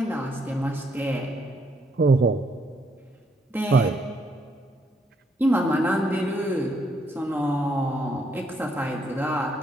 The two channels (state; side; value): normal; both; correlation 0.73